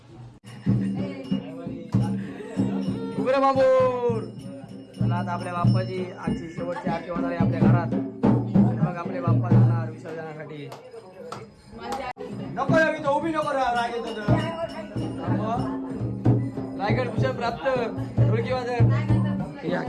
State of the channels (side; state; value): both; identical; correlation 1.00